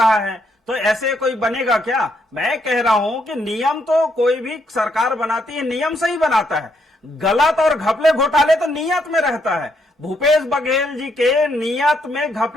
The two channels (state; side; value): normal; both; correlation 0.75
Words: है, तो ऐसे कोई बनेगा क्या? मैं कह रहा हूं कि नियम तो कोई भी सरकार बनाती है, नियम से ही बनाता है। गलत और घपले घोटाले तो नियत में रहता है। भूपेश बघेल जी के नियत में